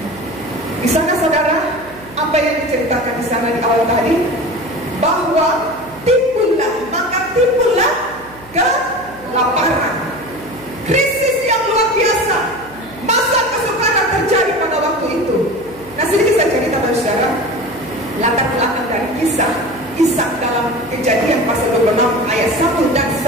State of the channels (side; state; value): right; noise; hum, 23 dB below the sound